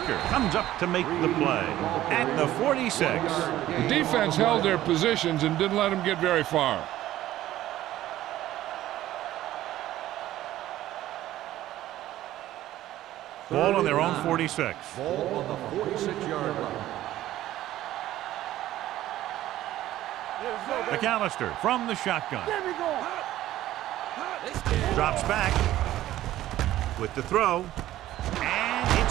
comes up to make the play at the 46. The defense held their positions and didn't let them get very far. Ball on their own 46. Ball on the 46-yard line. McAllister from the shotgun. There we go. Drops back with the throw. And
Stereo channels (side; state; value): left; quieter; 14.2 dB